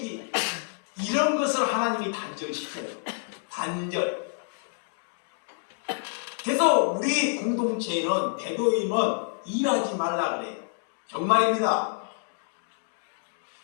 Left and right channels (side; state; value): right; silent; digital silence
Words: 이런 것을 하나님이 단절시켜요. 단절. 그래서 우리 공동체에는, 대도임은 일하지 말라 그래요. 정말입니다.